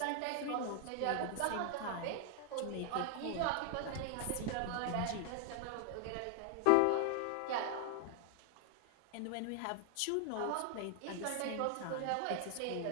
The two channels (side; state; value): both; different; correlation 0.00